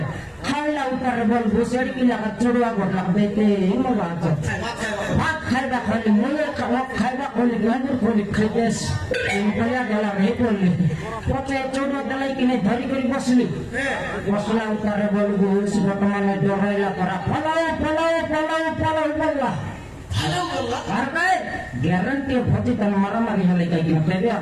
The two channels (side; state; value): both; identical; correlation 1.00